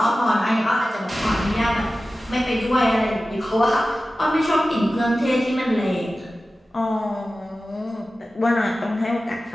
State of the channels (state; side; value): normal; both; correlation 0.95